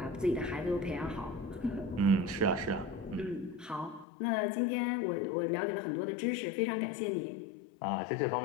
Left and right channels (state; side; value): drops out; right; at 4.0 s